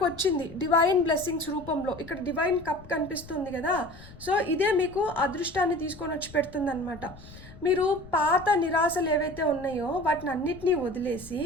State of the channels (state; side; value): noise; left; rumble, 18 dB below the sound